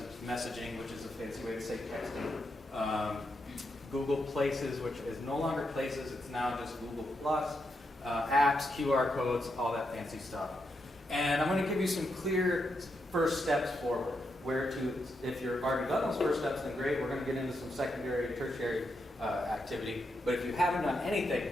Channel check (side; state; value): both; normal; correlation 0.83